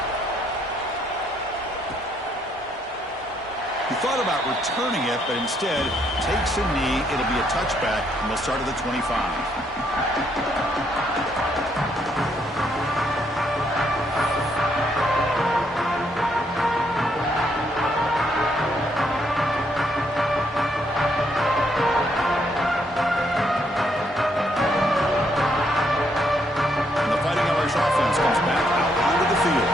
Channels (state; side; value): normal; both; correlation 0.72